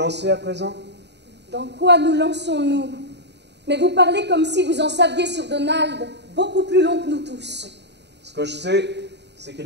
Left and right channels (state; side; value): late; left; 0.50 ms